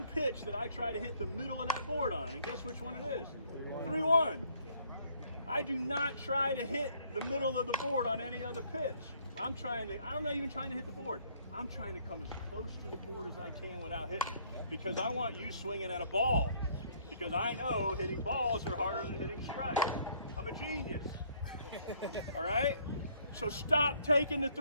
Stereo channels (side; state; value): both; inverted; correlation -0.64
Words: pitch that I try to hit the middle of that board on, and guess which one it is? 3-1. I do not try to hit the middle of the board on any other pitch. I'm not even trying to hit the board. I'm trying to come as close to the board as I can without hitting, because I want you swinging at a ball, because I know hitting balls are harder than hitting strikes. I'm a genius. All right? So stop taking the